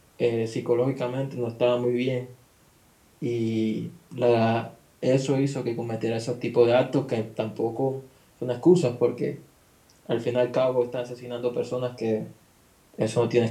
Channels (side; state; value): both; identical; correlation 1.00